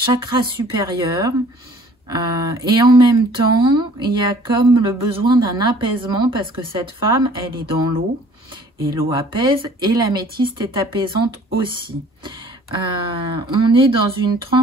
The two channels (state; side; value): normal; both; correlation 0.53